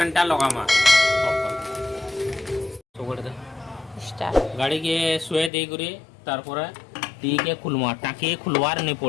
टा लगामा गाड़ी के सुए दे गुरे तारपरे टी के खुलवा टाकी खुलवार नहीं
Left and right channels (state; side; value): drops out; right; at 5.5 s